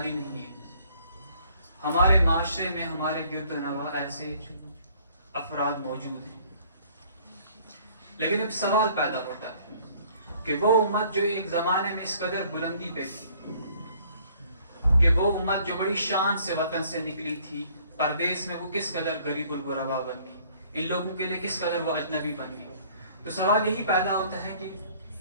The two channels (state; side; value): inverted; both; correlation -0.58